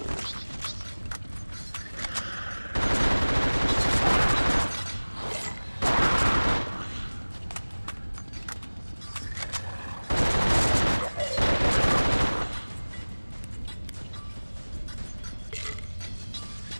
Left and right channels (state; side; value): inverted; both; correlation -1.00